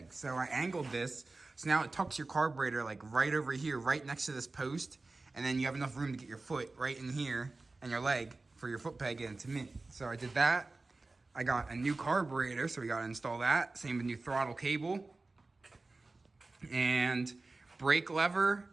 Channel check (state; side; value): quieter; left; 3.4 dB